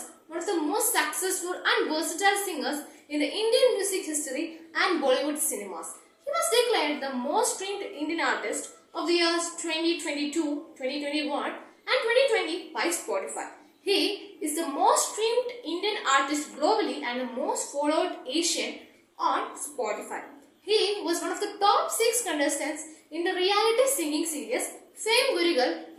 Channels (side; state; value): both; identical; correlation 1.00